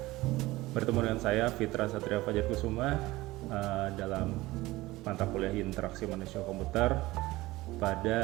Bertemu dengan saya Fitra Satria Fajar Kusuma dalam mata kuliah interaksi manusia komputer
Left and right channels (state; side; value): quieter; left; 19.0 dB